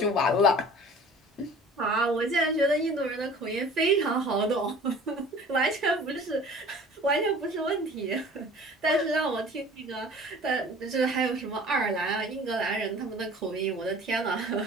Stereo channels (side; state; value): both; normal; correlation 0.45